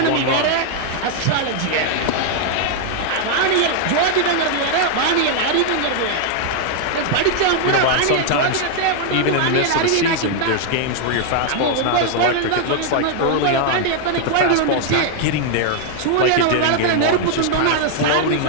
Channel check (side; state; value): both; different; correlation 0.00